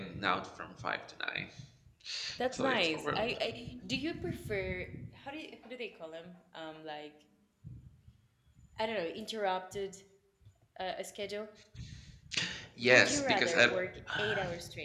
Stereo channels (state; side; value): identical; both; correlation 1.00